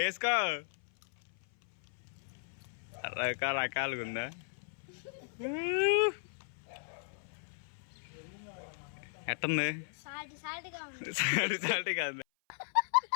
రకరకాలుగా ఉందా? ఎట్టుంది? సాల్టీగా ఉంది.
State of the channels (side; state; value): right; silent; 54 dB below the other